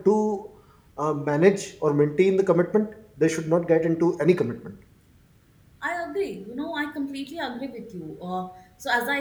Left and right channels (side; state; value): both; identical; correlation 1.00